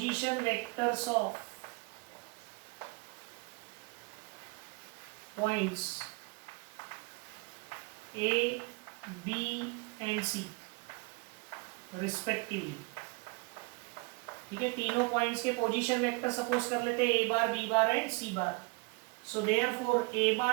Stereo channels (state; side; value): quieter; left; 28.1 dB